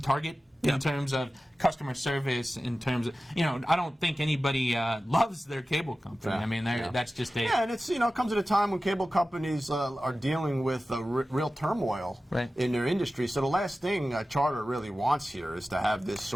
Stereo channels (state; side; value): normal; both; correlation 0.95